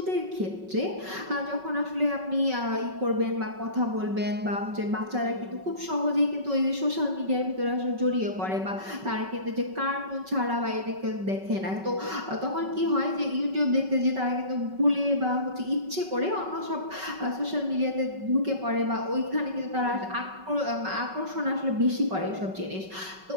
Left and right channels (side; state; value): left; late; 5.3 ms